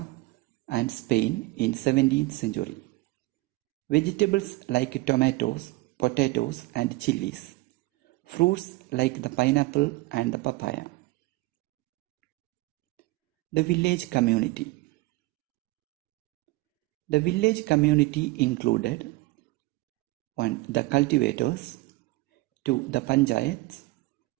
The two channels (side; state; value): left; quieter; 21.2 dB